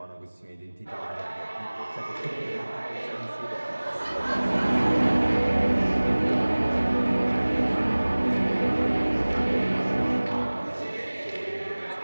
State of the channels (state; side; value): inverted; both; correlation -1.00